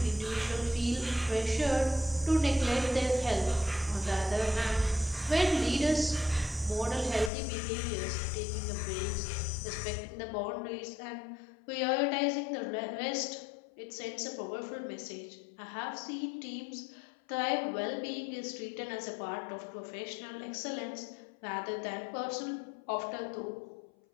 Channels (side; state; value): right; drops out; at 7.3 s